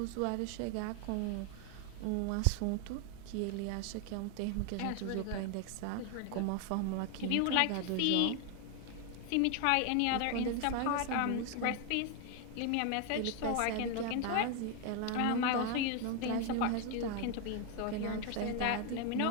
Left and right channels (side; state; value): both; different; correlation 0.01